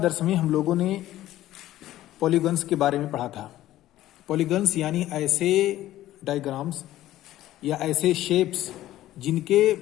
में हम लोगों ने पॉलीगन्स के बारे में पढ़ा था। पॉलीगन्स यानी ऐसे डायग्राम्स या ऐसे शेप्स जिनके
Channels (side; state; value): right; quieter; 14.3 dB